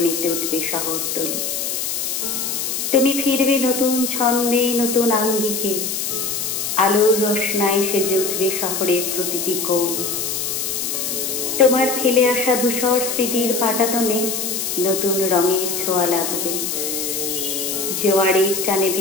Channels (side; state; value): left; noise; hiss, 2 dB below the sound